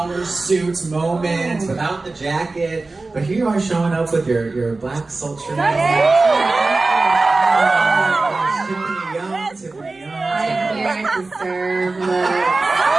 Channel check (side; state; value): left; quieter; 3.5 dB